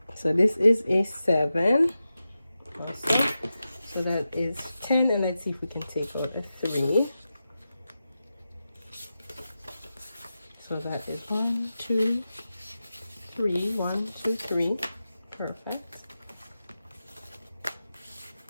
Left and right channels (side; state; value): both; inverted; correlation -0.92